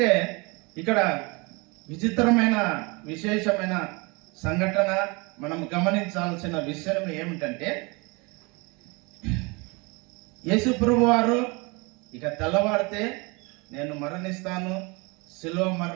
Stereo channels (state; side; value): quieter; left; 27.9 dB